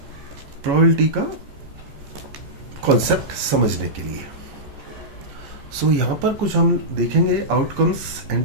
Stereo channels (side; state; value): left; late; 14 ms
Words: प्रोबेबिलिटी का कॉन्सेप्ट समझने के लिए। सो यहां पर कुछ हम देखेंगे आउटकम्स